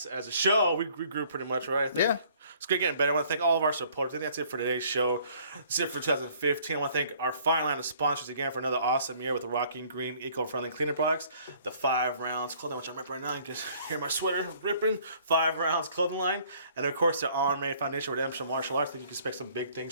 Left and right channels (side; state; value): both; inverted; correlation -0.58